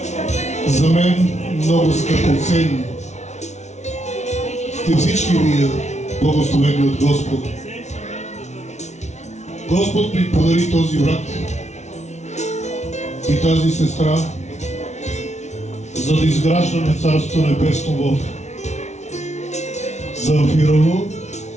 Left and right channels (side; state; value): right; late; 0.33 ms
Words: За мен много скъпоценни сте всички вие, благословени от Господа. Господ ми подари този брат и тази сестра, за да изграждаме Царство Небесно в Замфирово,